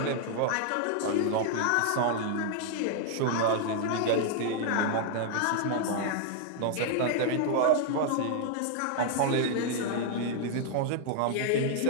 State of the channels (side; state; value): both; different; correlation 0.00